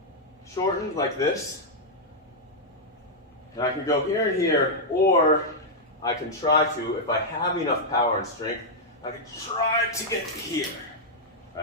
shortened like this. And I can go here and here, or I can try to, if I have enough power and strength, I can try to get here.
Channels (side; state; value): both; normal; correlation -0.05